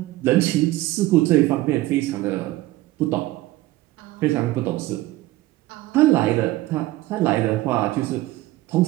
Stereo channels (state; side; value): quieter; left; 17.4 dB